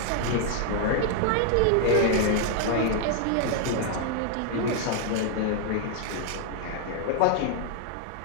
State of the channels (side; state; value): both; different; correlation 0.00